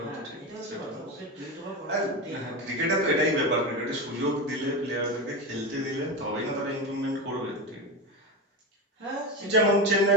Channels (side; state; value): both; normal; correlation 0.19